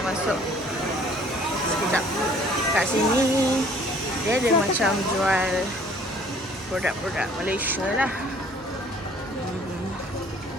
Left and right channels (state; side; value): normal; both; correlation 0.56